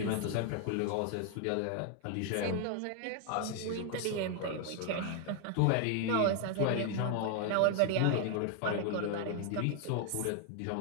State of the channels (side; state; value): both; different; correlation 0.00